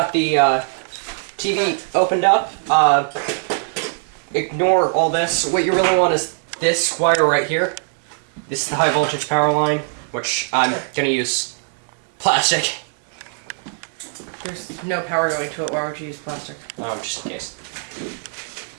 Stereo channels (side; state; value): left; silent; digital silence